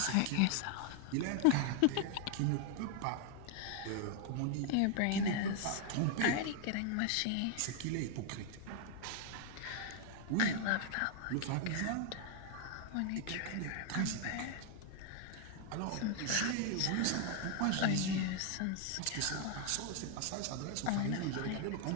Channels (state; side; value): different; both; correlation 0.00